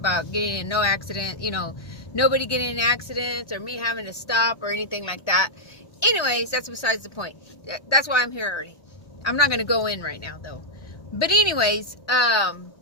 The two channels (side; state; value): right; late; 1.3 ms